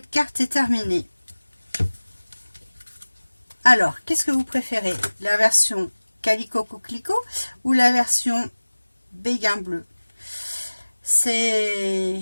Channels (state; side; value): inverted; both; correlation -1.00